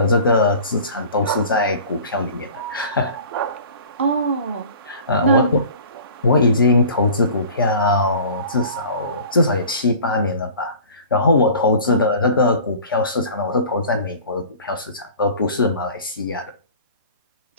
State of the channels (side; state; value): both; inverted; correlation -0.43